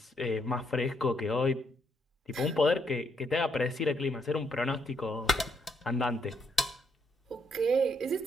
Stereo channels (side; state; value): both; normal; correlation 0.75